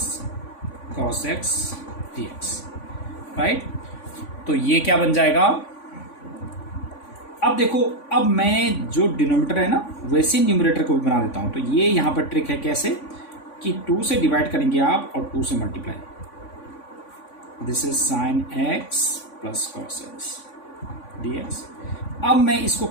cos x dx, right. तो ये क्या बन जाएगा, अब देखो, अब मैं जो डिनोमिनेटर है ना वैसे न्यूमरेटर को भी बना देता हूं। तो ये यहाँ पर ट्रिक है कैसे, कि 2 से डिवाइड करेंगे आप और 2 से multiply, this is sine x plus cos x dx। अब मैं इसको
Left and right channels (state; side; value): late; right; 3.5 ms